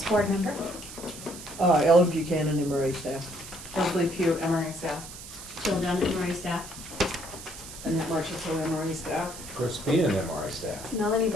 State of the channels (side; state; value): right; noise; hiss, 13 dB below the sound